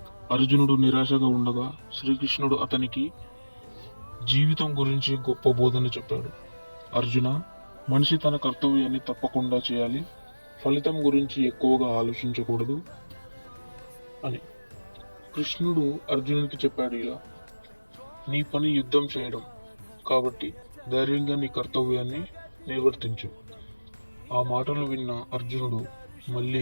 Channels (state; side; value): inverted; both; correlation -1.00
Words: అర్జునుడు నిరాశగా ఉండగా శ్రీకృష్ణుడు అతనికి జీవితం గురించి గొప్ప బోధన చెప్పాడు. అర్జున, మనిషి తన కర్తవ్యాన్ని తప్పకుండా చేయాలి, ఫలితం గురించి ఎక్కువగా ఆలోచించకూడదు అని. కృష్ణుడు అర్జునుడికి చెప్పాడు ఇలా: నీ పని యుద్ధం చేయడం కాబట్టి ధైర్యంగా నీ కర్తవ్యాన్ని నిర్వర్తించు. ఆ మాటలు విన్న అర్జునుడు మళ్ళీ